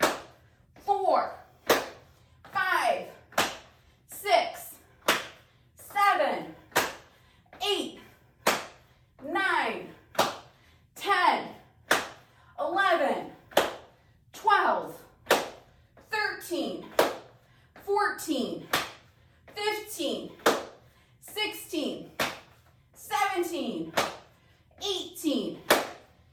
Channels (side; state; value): both; identical; correlation 1.00